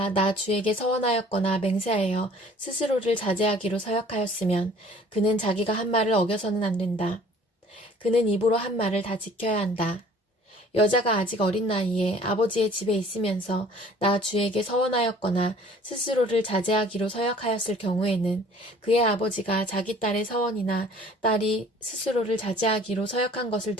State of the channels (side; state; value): both; normal; correlation 0.52